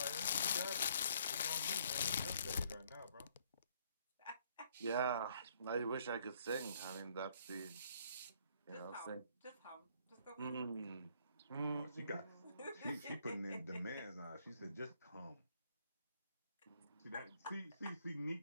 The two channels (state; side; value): inverted; both; correlation -0.65